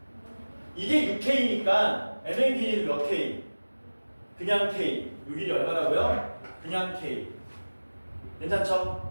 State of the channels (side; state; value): both; inverted; correlation -1.00